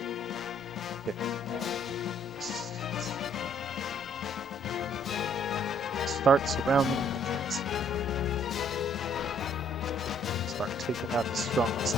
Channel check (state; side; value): normal; both; correlation 0.63